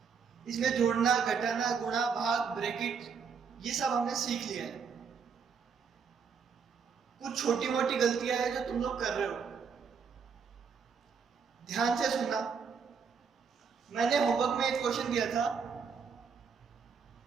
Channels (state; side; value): quieter; left; 6.2 dB